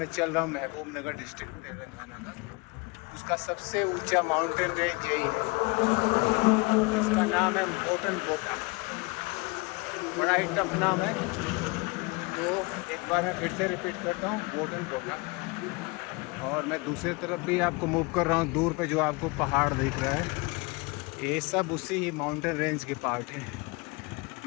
चल रहा हूँ महबूब नगर डिस्ट्रिक्ट तेलंगाना का, उसका सबसे ऊंचा माउंटेन रेंज यही है। इसका नाम है मोटन बोटा। बड़ा ही टफ नाम है, तो एक बार मैं फिर से रिपीट करता हूँ, मोटन बोटा। और मैं दूसरी तरफ भी आपको मूव कर रहा हूँ। दूर पे जो आपको पहाड़ दिख रहा है, ये सब उसी ही माउंटेन रेंज के पार्ट हैं।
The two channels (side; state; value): right; quieter; 27.7 dB